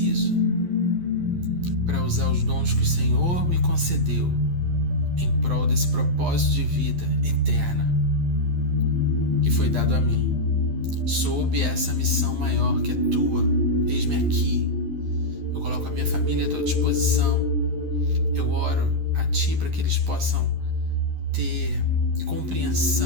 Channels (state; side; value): late; left; 11 ms